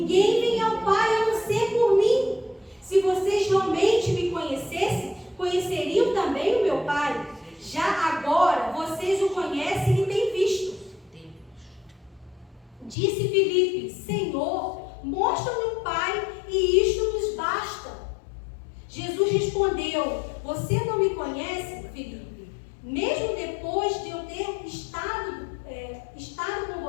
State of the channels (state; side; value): drops out; right; at 13.0 s